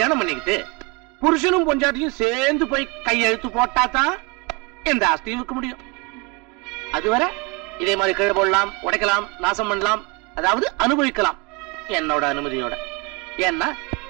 பண்ணிக்கிட்டு புருஷனும் பொஞ்சாட்டியும் சேர்ந்து போய் கையெழுத்து போட்டாதான் எந்த ஆஸ்தியும் விற்க முடியும். அதுவரை இதே மாதிரி கீழே போடலாம், உடைக்கலாம், நாசம் பண்ணலாம், அதாவது அனுபவிக்கலாம் என்னோட அனுமதியோட. ஏன்னா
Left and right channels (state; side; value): quieter; left; 28.7 dB